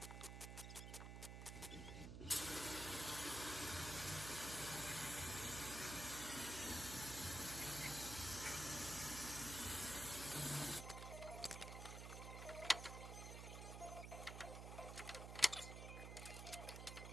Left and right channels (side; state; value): right; noise; hum, 7 dB below the sound